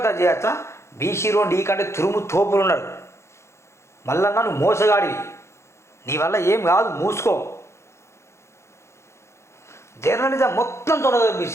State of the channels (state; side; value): late; right; 0.13 ms